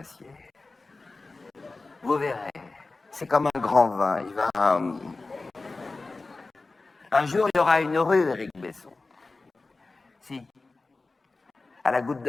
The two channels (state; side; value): quieter; right; 3.5 dB